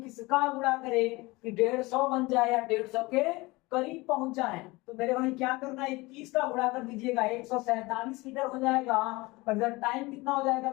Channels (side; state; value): right; quieter; 22.6 dB